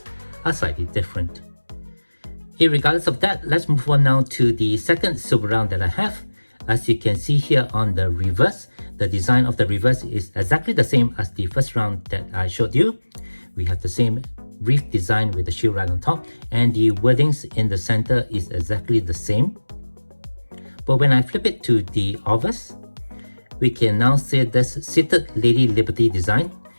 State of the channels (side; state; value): both; inverted; correlation -1.00